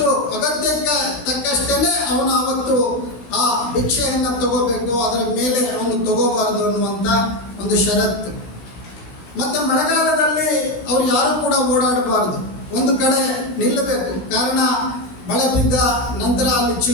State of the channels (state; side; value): late; right; 17 ms